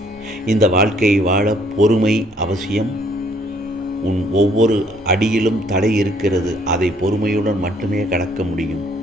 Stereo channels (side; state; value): both; normal; correlation 0.63